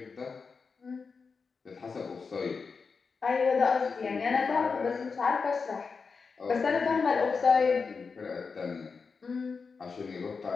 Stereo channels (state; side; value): quieter; right; 5.0 dB